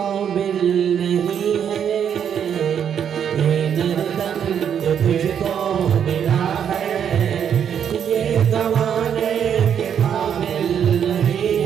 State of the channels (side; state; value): left; quieter; 8.4 dB